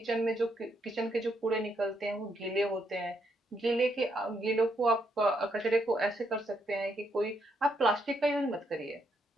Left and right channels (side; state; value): both; normal; correlation 0.76